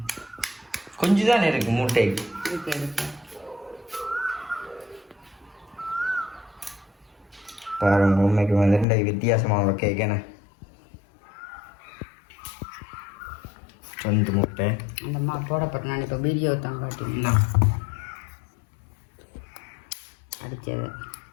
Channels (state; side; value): drops out; right; at 8.8 s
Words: கொஞ்சம் தானே இருக்கு முட்டை பாருங்க உண்மைக்கு வந்து வித்தியாசமான கேட்கண்ணே 2 முட்டை அந்த அம்மா போடப்பட்ட நான் இப்போ வீடியோ தான் காட்டினேன் அடித்தது